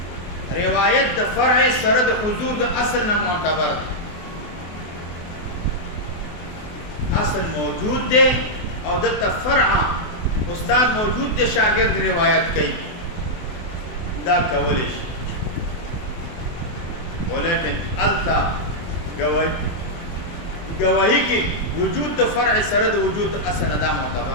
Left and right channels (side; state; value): right; late; 24 ms